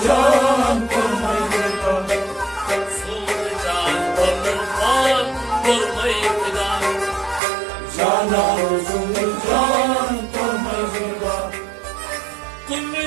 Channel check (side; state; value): left; drops out; at 7.4 s